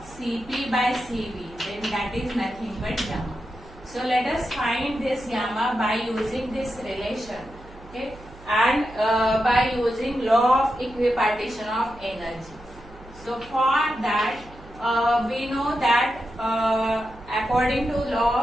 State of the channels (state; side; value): noise; right; hum, 20 dB below the sound